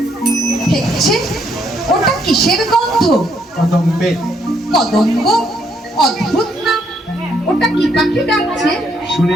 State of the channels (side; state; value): both; normal; correlation 0.72